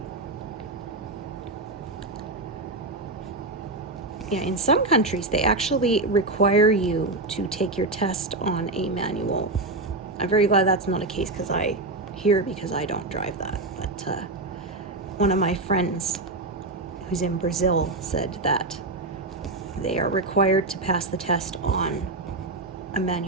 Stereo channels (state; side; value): quieter; left; 3.1 dB